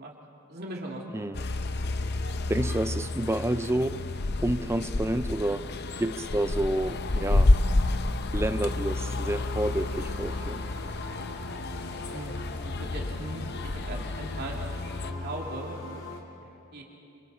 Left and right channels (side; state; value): both; normal; correlation 0.85